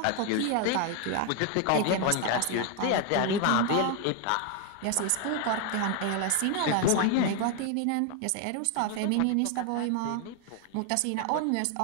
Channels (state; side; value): different; both; correlation 0.01